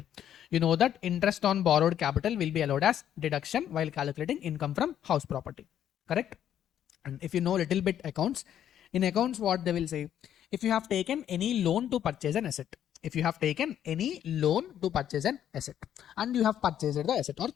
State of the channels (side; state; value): right; quieter; 10.3 dB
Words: You know that interest on borrowed capital will be allowed as deduction while calculating income from house property. Correct? And if you know little bit accounts, in accounts what they will say, if you have taken any loan to purchase an asset, if you have taken any loan to purchase an asset and you have purchased the asset or